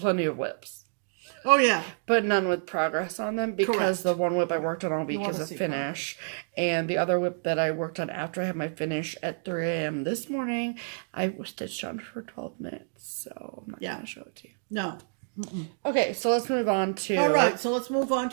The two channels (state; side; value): silent; left; digital silence